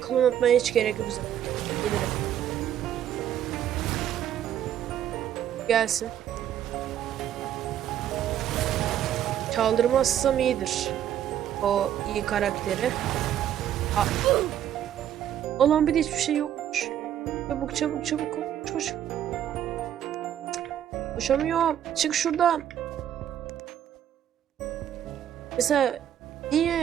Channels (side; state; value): left; quieter; 10.6 dB